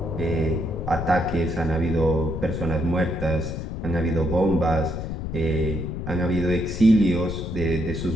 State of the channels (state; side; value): noise; left; rumble, 5 dB below the sound